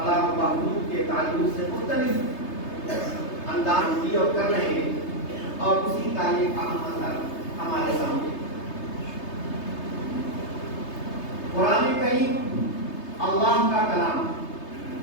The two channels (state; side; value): late; right; 3.3 ms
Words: و بہبود کے تعلق سے مختلف انداز کی اور کر رہے ہیں، اور اسی کا یہ اہم اثر ہمارے سامنے۔ قرآن کریم اللہ کا کلام